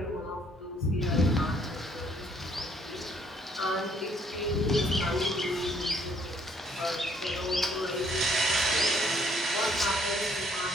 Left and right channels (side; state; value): both; normal; correlation 0.64